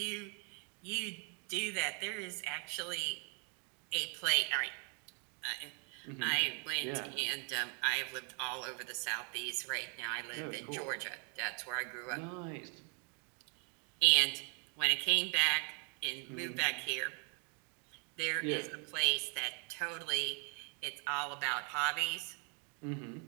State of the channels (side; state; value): left; quieter; 37.8 dB